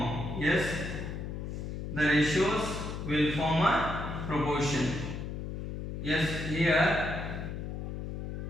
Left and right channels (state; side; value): noise; left; hum, 5 dB below the sound